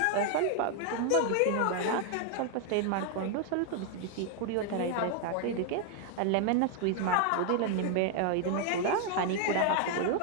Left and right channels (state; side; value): different; both; correlation 0.00